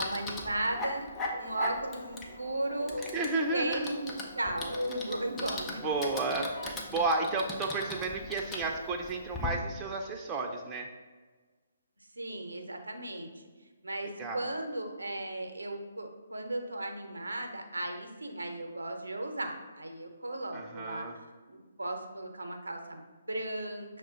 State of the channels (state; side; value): inverted; both; correlation -0.59